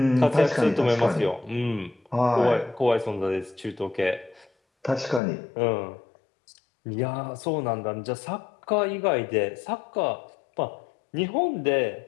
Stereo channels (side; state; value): right; drops out; at 5.2 s